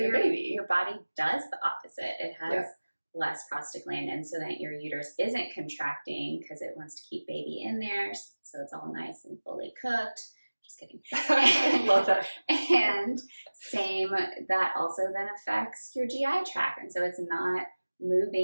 a baby. Your body does the opposite. It has less prostaglandin so that your uterus isn't contracting because it wants to keep baby in there, so it's all nice and fully cooked. Just kidding. I love that. And same, that also then affects your GI tract. And so it's not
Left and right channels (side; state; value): both; inverted; correlation -1.00